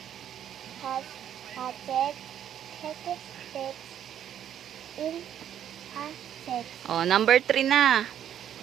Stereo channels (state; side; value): quieter; left; 10.1 dB